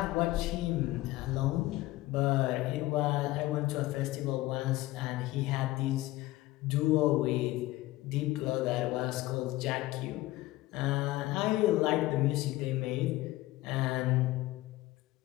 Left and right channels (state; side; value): quieter; right; 17.8 dB